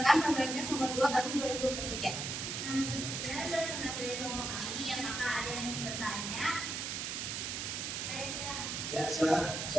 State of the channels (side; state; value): right; noise; hiss, 3 dB below the sound